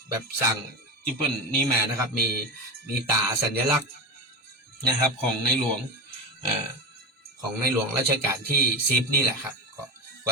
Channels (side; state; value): both; normal; correlation 0.21